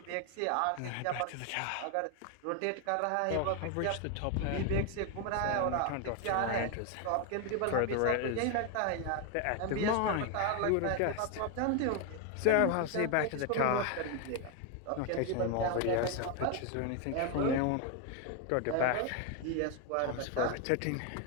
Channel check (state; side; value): different; both; correlation 0.01